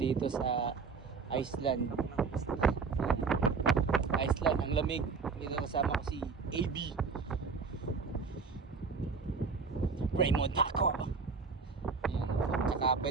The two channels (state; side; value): quieter; left; 5.0 dB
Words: sa Iceland. Iceland, ang lamig. Dito kasama ko si AB Raymond Taco. Yan. Tsaka